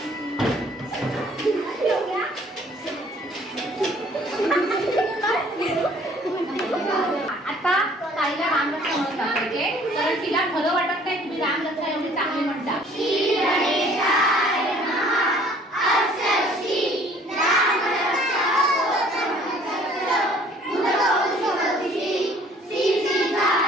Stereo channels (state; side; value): normal; both; correlation 0.56